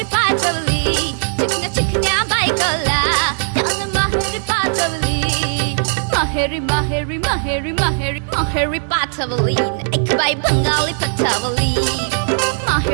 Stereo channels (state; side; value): silent; left; digital silence